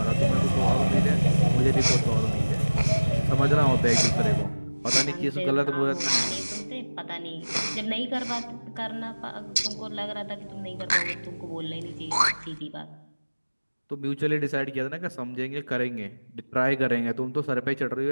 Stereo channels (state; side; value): inverted; both; correlation -1.00